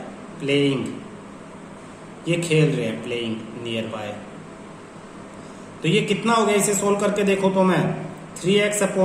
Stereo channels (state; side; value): identical; both; correlation 1.00